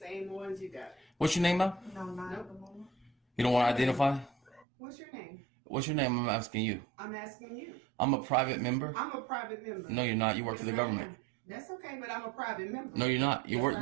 ones you got. What's your name now? No, not at the moment. You don't want to identify? What's your name? What's your name? I'm asking you. I'm asking you. I'm a private member. I'm a private member. No, you're not. You work for the government. That's okay, but I'm a private member. No, you're not. You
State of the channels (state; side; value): drops out; left; at 4.7 s